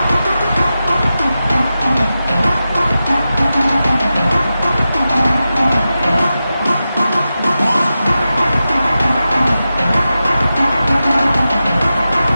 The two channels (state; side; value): inverted; both; correlation -0.92